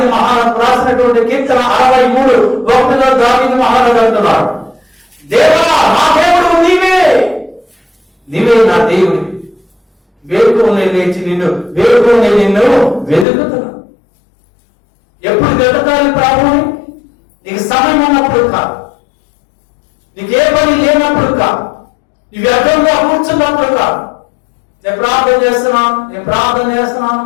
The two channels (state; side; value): drops out; right; at 13.2 s